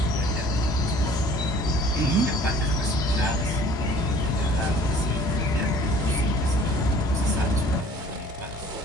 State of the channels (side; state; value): both; normal; correlation 0.53